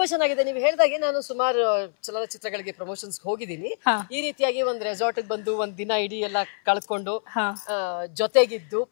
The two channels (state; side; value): silent; right; 62 dB below the other